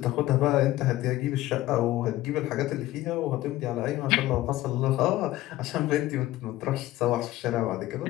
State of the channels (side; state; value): right; quieter; 16.0 dB